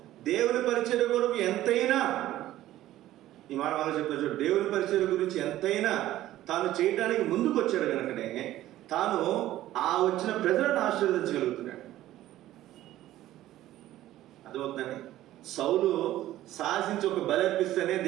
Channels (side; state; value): left; quieter; 14.3 dB